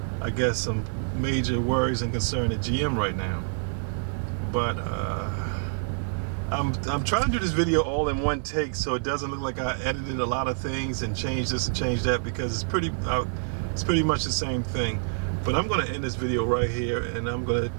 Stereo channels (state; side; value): silent; left; digital silence